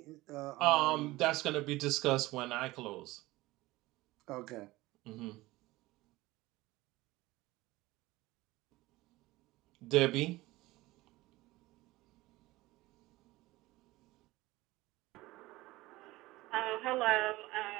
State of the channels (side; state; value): left; quieter; 19.3 dB